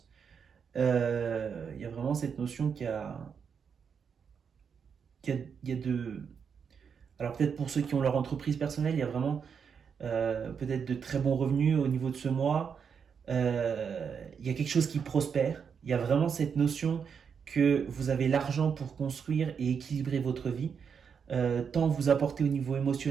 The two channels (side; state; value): left; quieter; 6.7 dB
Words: Il y a vraiment cette notion qu'il y a il y a alors peut-être pour ceux qui ont leur entreprise personnelle, il y a vraiment peut-être de très bons revenus au niveau de ce mois. Il y a quelque chose qui prospère. Il y a vraiment cette notion que vous avez l'argent pour construire et équilibrer votre vie. Tant vous apporter au niveau